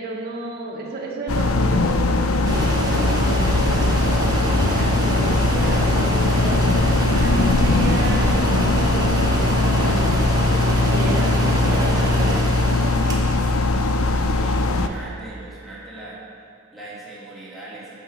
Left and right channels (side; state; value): both; normal; correlation 0.59